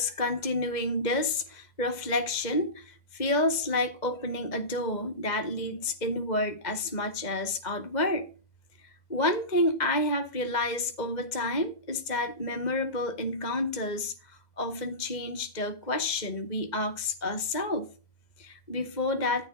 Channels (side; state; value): right; late; 2.0 ms